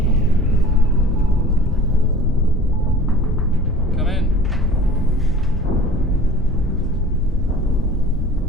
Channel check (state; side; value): normal; both; correlation 0.44